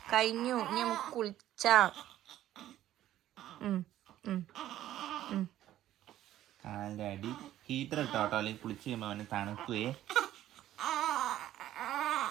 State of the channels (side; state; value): left; quieter; 13.0 dB